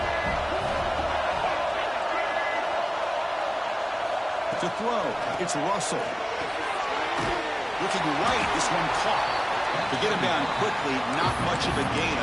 To throw, it's Russell. Looking right, this one caught. To get him down quickly, not much of a gain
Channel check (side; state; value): both; identical; correlation 1.00